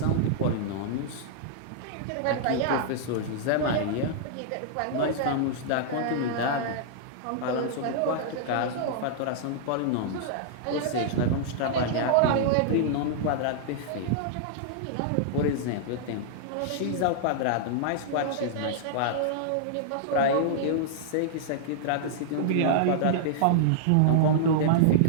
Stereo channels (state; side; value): different; both; correlation -0.02